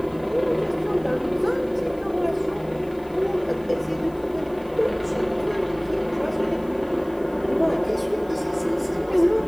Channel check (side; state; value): left; noise; hiss, 28 dB below the sound